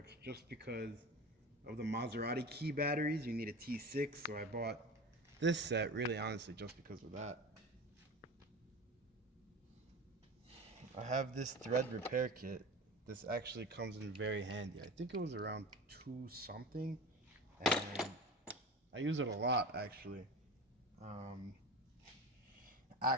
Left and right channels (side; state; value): both; normal; correlation 0.31